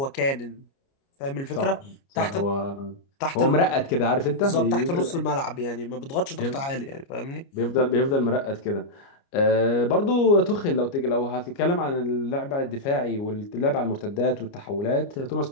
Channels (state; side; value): late; right; 29 ms